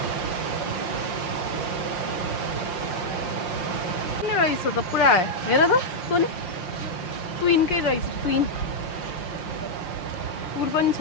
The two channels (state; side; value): late; right; 5.9 ms